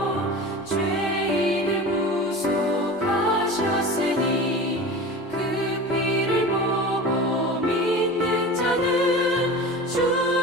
죄인을 구속하셨으니 그 피를 보고 믿는 자는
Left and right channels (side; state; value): both; normal; correlation 0.33